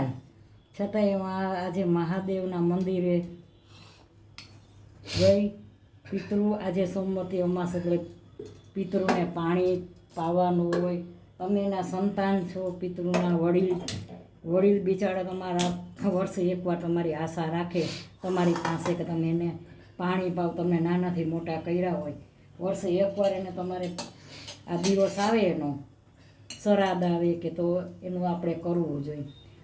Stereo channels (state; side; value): identical; both; correlation 1.00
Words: છતાંય આજે મહાદેવના મંદિરે ગઈ. પિતૃ આજે સોમવતી અમાસ એટલે પિતૃને પાણી પાવાનું હોય. તમે એના સંતાન છો, પિતૃના વડીલ બિચારા તમારા વર્ષે એકવાર તમારી આશા રાખે તમારી પાસે કે તમે એને પાણી પાવ. તમને નાનાથી મોટા કર્યા હોય, વર્ષે એકવાર એને તમારે આ દિવસ આવે, એનો શ્રાદ્ધ આવે કે તો એનું આપણે કરવું જોઈએ.